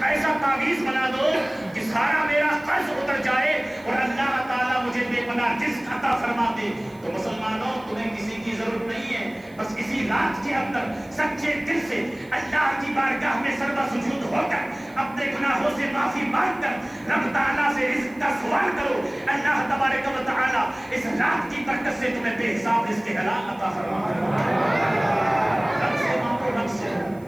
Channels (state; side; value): noise; right; hiss, 29 dB below the sound